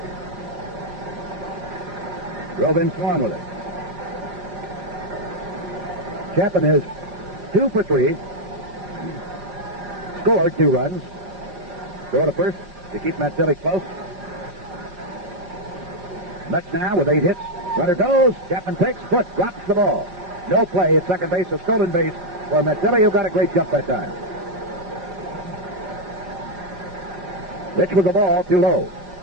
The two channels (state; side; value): late; left; 5.5 ms